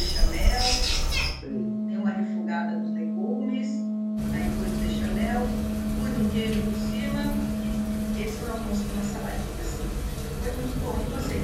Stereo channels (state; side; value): identical; both; correlation 1.00